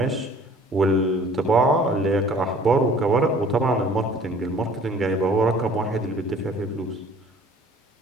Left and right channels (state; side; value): normal; both; correlation 0.52